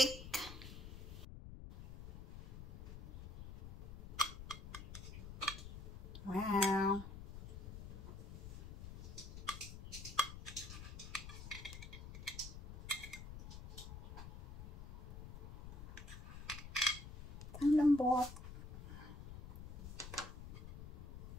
Wow! Ang lambot.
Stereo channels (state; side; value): noise; left; rumble, 10 dB below the sound